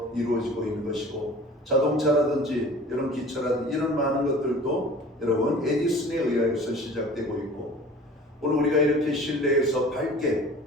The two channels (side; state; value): both; normal; correlation 0.44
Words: 이루어지고 있는 것이고, 자동차라든지 이런 기차라든지 이런 많은 것들도 여러분 에디슨에 의해서 시작되고 있고, 오늘 우리가 이렇게 실내에서 밝게